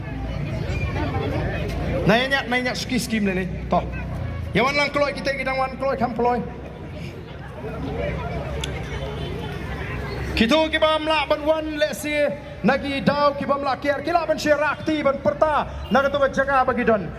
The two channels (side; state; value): both; identical; correlation 1.00